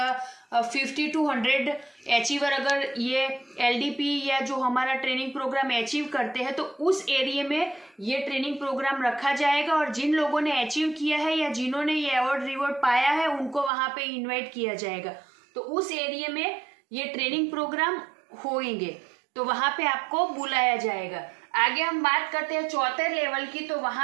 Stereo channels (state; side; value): drops out; left; at 13.7 s